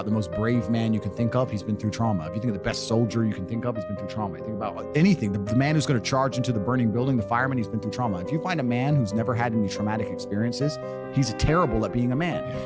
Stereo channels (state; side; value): identical; both; correlation 1.00